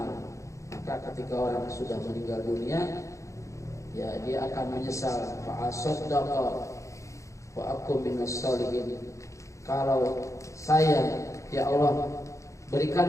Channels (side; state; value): right; late; 0.15 ms